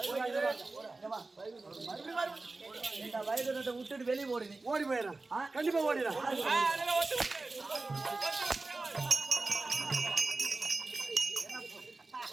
வயது விட்டுட்டு வெளியே ஓடுது ஓடி போயிடுறேன் கண்டிப்பா ஓடிடுறேன்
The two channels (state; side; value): quieter; left; 3.4 dB